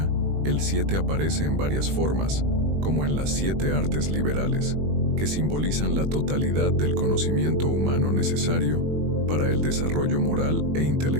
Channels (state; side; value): late; left; 20 ms